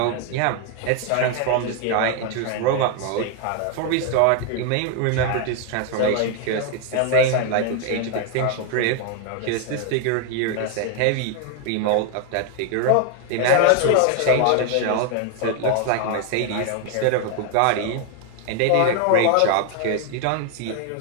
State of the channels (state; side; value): different; both; correlation 0.01